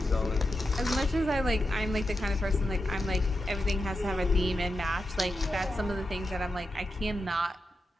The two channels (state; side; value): normal; both; correlation 0.89